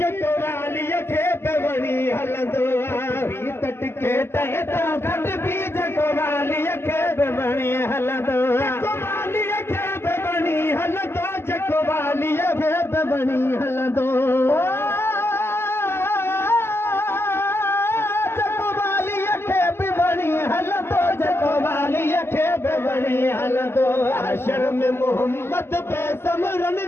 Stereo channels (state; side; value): late; right; 0.12 ms